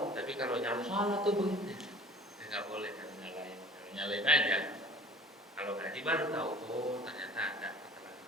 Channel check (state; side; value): normal; both; correlation 0.47